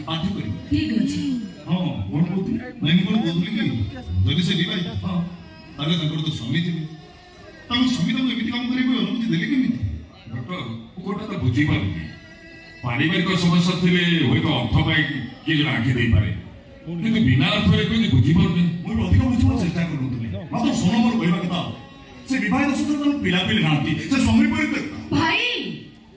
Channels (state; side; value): identical; both; correlation 1.00